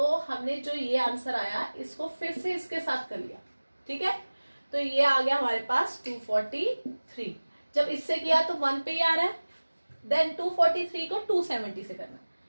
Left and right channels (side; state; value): both; inverted; correlation -1.00